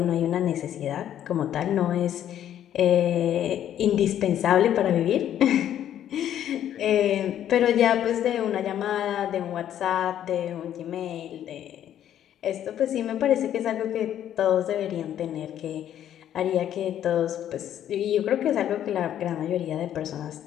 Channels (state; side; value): quieter; right; 10.8 dB